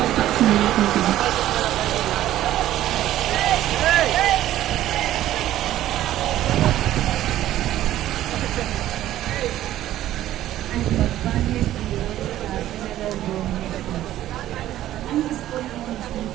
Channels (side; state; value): left; quieter; 13.4 dB